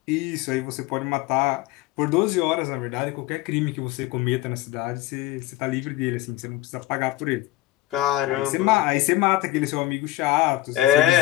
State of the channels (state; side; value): quieter; right; 16.7 dB